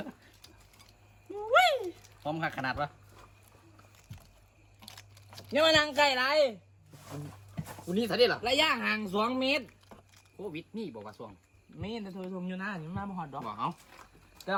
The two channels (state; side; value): identical; both; correlation 1.00